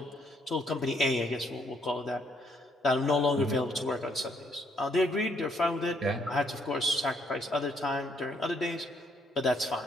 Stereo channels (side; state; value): both; normal; correlation 0.70